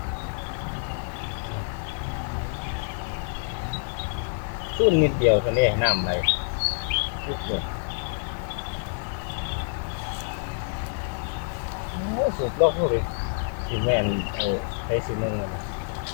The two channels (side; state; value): right; silent; digital silence